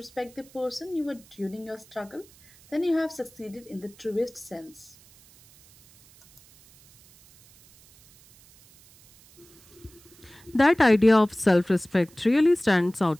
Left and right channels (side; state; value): right; noise; hiss, 26 dB below the sound